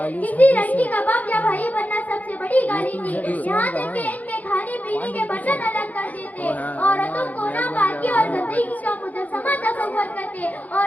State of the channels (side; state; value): right; late; 0.078 ms